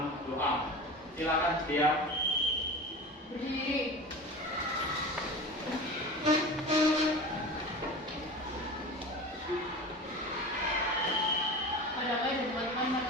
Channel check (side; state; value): both; normal; correlation 0.32